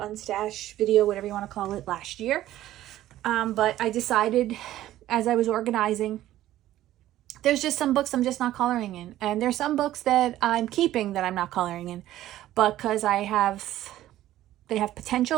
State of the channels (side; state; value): left; quieter; 13.9 dB